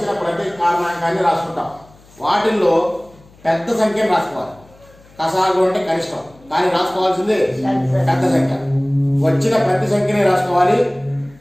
ప్రతి కారణాంకాన్ని రాసుకుంటాం. వాటిల్లో పెద్ద సంఖ్యను రాసుకోవాలి. కసాగు అంటే కనిష్టం, కానీ రాసుకోవాల్సింది పెద్ద సంఖ్య. వచ్చిన ప్రతి సంఖ్యని రాసుకోవాలి,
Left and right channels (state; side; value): noise; left; hum, 27 dB below the sound